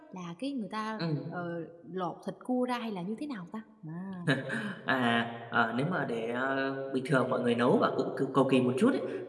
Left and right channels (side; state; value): both; identical; correlation 1.00